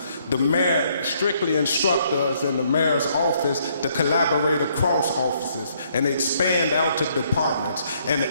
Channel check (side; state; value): both; inverted; correlation -0.69